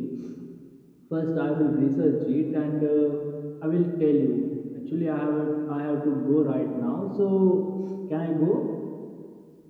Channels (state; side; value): identical; both; correlation 1.00